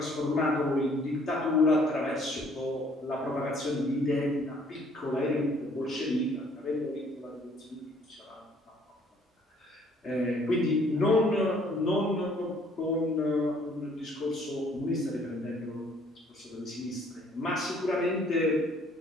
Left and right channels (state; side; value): normal; both; correlation 0.61